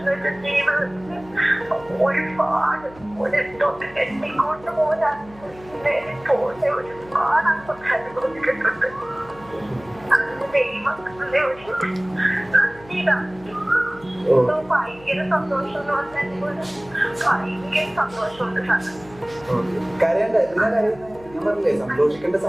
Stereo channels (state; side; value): noise; left; hum, 22 dB below the sound